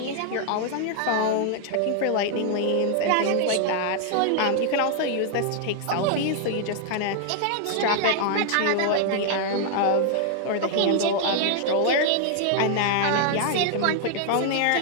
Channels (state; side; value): different; both; correlation 0.00